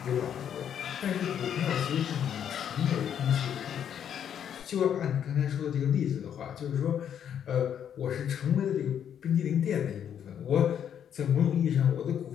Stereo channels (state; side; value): quieter; right; 9.0 dB